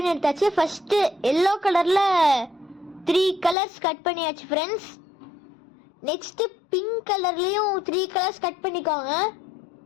எடுத்தாச்சு. ஃபர்ஸ்ட் எல்லோ கலர்ல 3 கலர்ஸ் கட் பண்ணியாச்சு ஃப்ரெண்ட்ஸ். நெக்ஸ்ட் பிங்க் கலர்லயும் 3 கலர்ஸ் கட் பண்ணிக்கோங்க.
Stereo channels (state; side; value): drops out; right; at 3.6 s